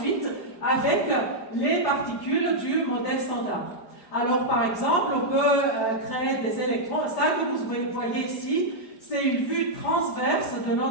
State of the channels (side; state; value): right; late; 4.9 ms